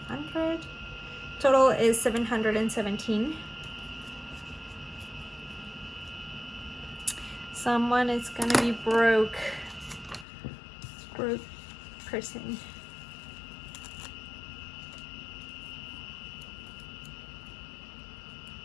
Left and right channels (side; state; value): right; drops out; at 10.2 s